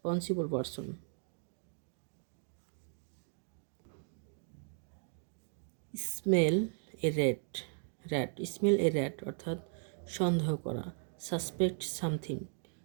person. Smell a rat অর্থাৎ সন্দেহ করা। Suspect something.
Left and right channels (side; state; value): left; silent; 53 dB below the other